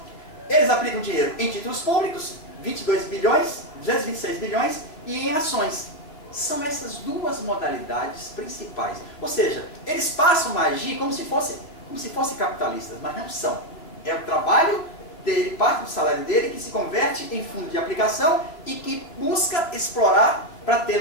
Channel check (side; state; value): right; late; 3.1 ms